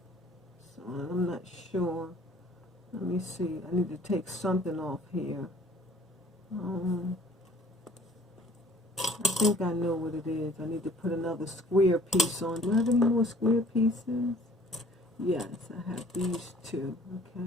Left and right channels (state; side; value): normal; both; correlation 0.54